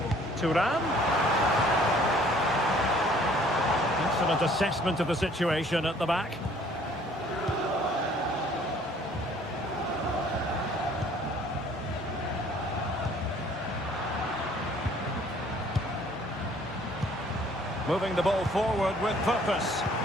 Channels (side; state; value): both; normal; correlation 0.57